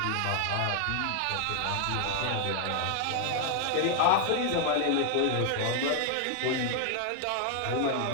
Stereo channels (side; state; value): both; different; correlation 0.00